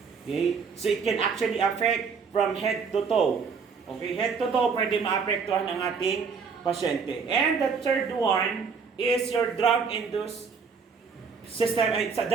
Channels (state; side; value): quieter; left; 5.6 dB